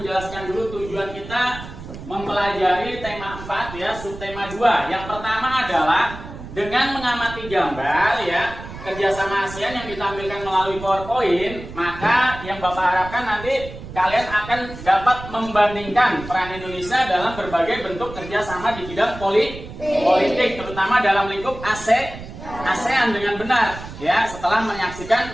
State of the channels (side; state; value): right; noise; rumble, 13 dB below the sound